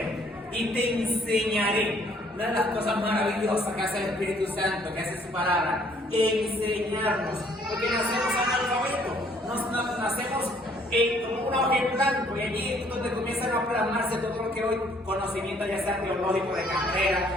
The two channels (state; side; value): normal; both; correlation 0.63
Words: y te enseñaré. Una de las cosas maravillosas que hace el Espíritu Santo, que hace su palabra, enseñarnos, porque nacemos analfabetos, nacemos como una hoja en blanco, y allí es donde comienzan a plasmarse todo lo que hoy conocimiento, ya sea teológico, de carrera,